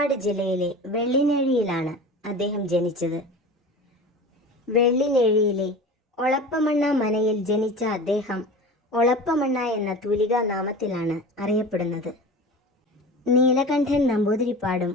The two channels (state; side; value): normal; both; correlation 0.35